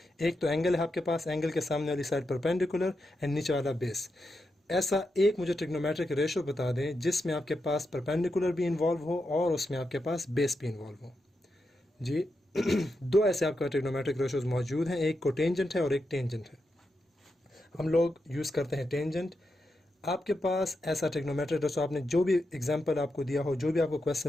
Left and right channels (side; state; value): both; normal; correlation 0.86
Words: एक तो एंगल है आपके पास, एंगल के सामने वाली साइड परपेंडिकुलर एंड नीचे वाला बेस। ऐसा एक मुझे ट्रिग्नोमेट्रिक रेशियो बता दें जिसमें आपके पास परपेंडिकुलर भी इन्वॉल्व हो और उसमें आपके पास बेस भी इन्वॉल्व हो। जी दो ऐसे आपका ट्रिग्नोमेट्रिक रेशियोज मौजूद हैं, एक कोटेंजेंट है और एक टेंजेंट है। हम लोग यूज़ करते हैं टेंजेंट। आपके पास ऐसा ट्रिग्नोमेट्रिक रेशियो, आपने जो भी एग्जांपल आपको दिया हो, जो भी आपको